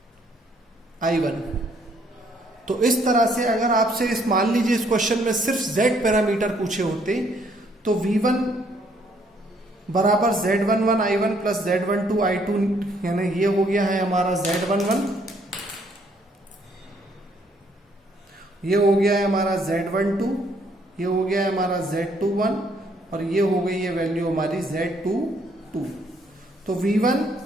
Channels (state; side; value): normal; both; correlation 0.67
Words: I1। तो इस तरह से अगर आपसे इस मान लीजिए इस क्वेश्चन में सिर्फ Z पैरामीटर पूछे होते तो V1 बराबर Z11 I1 plus Z12 I2, यानी ये हो गया है हमारा Z11। ये हो गया है हमारा Z12, ये हो गया है हमारा Z21 और ये हो गई है वैल्यू हमारी Z22। तो V1,